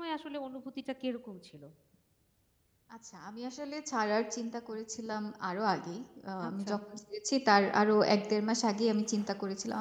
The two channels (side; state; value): both; identical; correlation 1.00